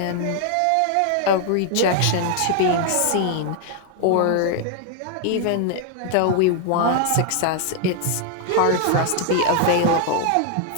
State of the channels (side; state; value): both; different; correlation 0.00